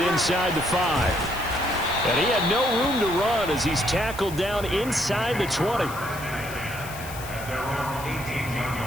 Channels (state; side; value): noise; left; hiss, 14 dB below the sound